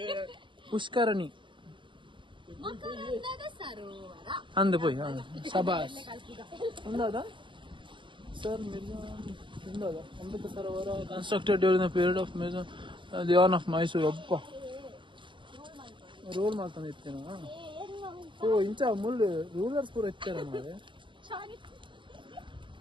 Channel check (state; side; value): late; left; 0.24 ms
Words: ಪುಷ್ಕರಣಿ ಮಕರಂದದ ಸರೋವರ ಅಂದು ಪೋಯ್ ಶಬಾಸ್ ಉಂದಾದ sir ಉಂದಾದ Amrit Sarovar constructed during the period of the on off Mysuru ಒಬ್ಬ ರೋಲ್ ಮಾಡ್ತಾನೆ ಇತ್ತೇನ ಓ ಇಂಚ ಮುಳ್ಳು ರೂಲರ್ಸ್ ಪೂರ ಇತ್ತಾರ ಮಾರೆ